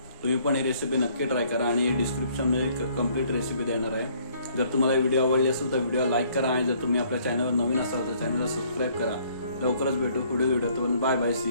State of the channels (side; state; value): both; inverted; correlation -0.62